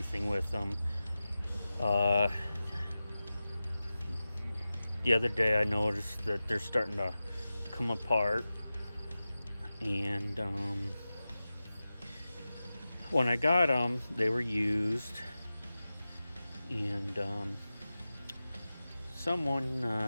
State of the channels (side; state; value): both; inverted; correlation -0.95